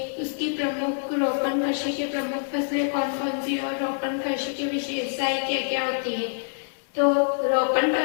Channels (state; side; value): silent; right; digital silence